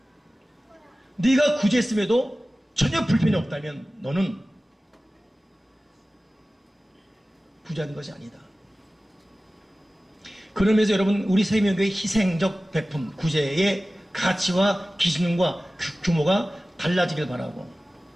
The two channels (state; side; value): normal; both; correlation 0.97